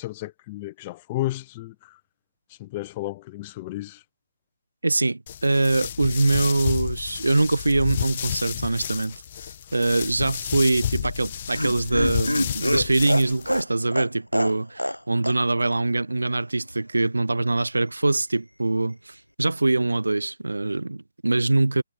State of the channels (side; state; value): both; inverted; correlation -0.94